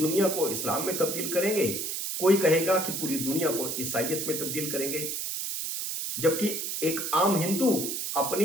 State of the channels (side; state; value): right; noise; hiss, 3 dB below the sound